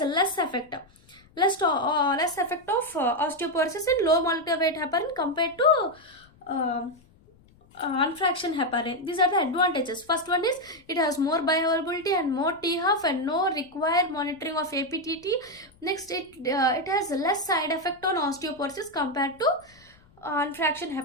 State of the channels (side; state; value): left; noise; rumble, 29 dB below the sound